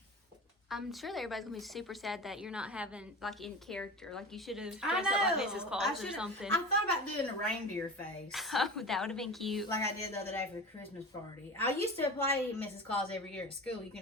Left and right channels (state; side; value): normal; both; correlation 0.32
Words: I'm sure that everybody's gonna be super sad that you're not having like in character. Like you should have I dressed up like know. Mrs. Claus or something. I thought about doing a reindeer face. Oh, that would have been cute. Like I did the other day for the Christmas party. I used to play Mrs. Claus every year at school. You